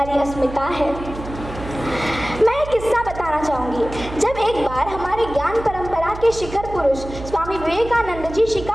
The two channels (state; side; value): noise; right; hum, 11 dB below the sound